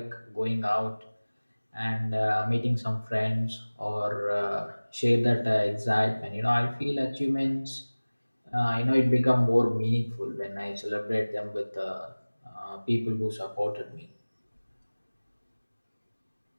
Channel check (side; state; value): both; inverted; correlation -1.00